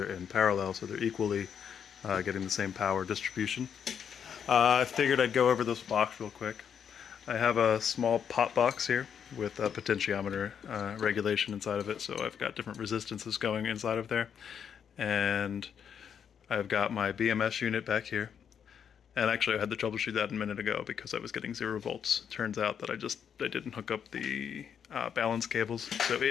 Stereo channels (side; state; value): right; quieter; 7.8 dB